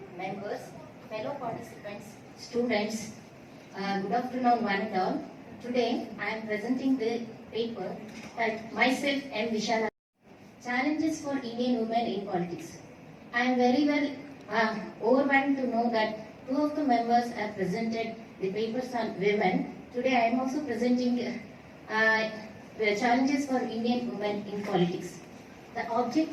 members, fellow participants, students, good afternoon one and all. Today I am presenting the paper that myself and Vishalakshi, Challenges for Indian Women in Politics. I am very well overwhelmed to know that two of the members have presented the papers on women. Today I am also presenting the challenges for Indian women in politics. The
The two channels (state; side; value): identical; both; correlation 1.00